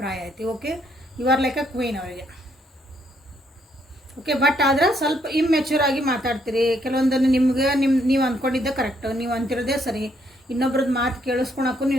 ಐತಿ. Okay, you are like a queen ಅವರಿಗೆ. ಓಕೆ, ಬಟ್ ಆದ್ರೆ ಸ್ವಲ್ಪ ಇಮ್ಮೆಚ್ಯೂರ್ ಆಗಿ ಮಾತಾಡ್ತೀರಿ. ಕೆಲವೊಂದನ್ನು ನಿಮ್ಗೆ ನೀವು ಅಂದ್ಕೊಂಡಿದ್ದೆ ಕರೆಕ್ಟ್, ನೀವು ಅಂತಿರೋದೇ ಸರಿ, ಇನ್ನೊಬ್ರದ್ದು ಮಾತು ಕೇಳಿಸ್ಕೊಳಕ್ಕೂ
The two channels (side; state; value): both; normal; correlation 0.71